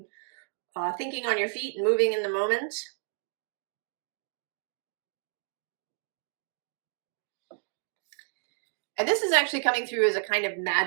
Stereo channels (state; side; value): silent; left; 57 dB below the other